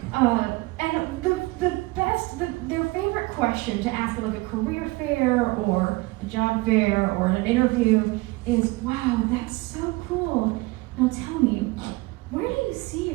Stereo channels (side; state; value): left; quieter; 22.6 dB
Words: And their favorite question to ask at like a career fair or a job fair or an interview is, wow, that's so cool. Now tell me, where do you see